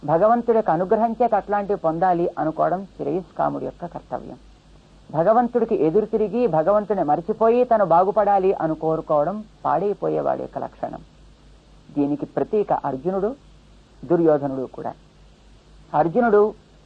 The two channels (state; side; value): identical; both; correlation 1.00